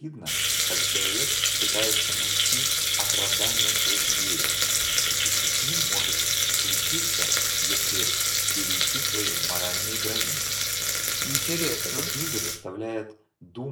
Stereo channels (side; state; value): both; identical; correlation 1.00